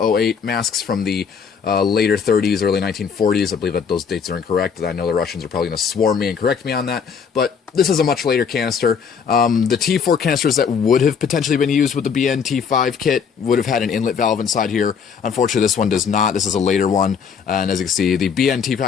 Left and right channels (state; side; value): quieter; right; 6.6 dB